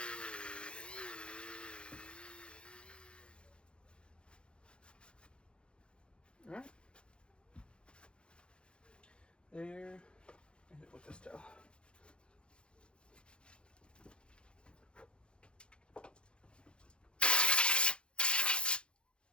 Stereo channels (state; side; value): late; right; 0.055 ms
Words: All right. There, and hit it with this towel.